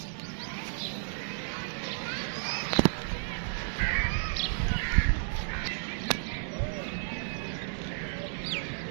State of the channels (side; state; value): left; silent; 56 dB below the other